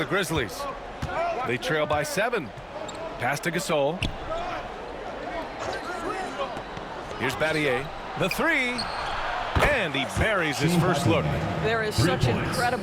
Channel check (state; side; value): identical; both; correlation 1.00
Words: Grizzlies. They trail by 7. Pass to Gasol. Here's Battier. The 3. And he buries his first look. There is such